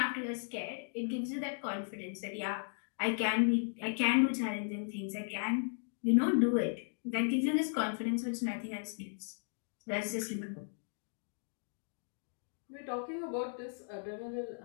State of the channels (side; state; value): right; silent; digital silence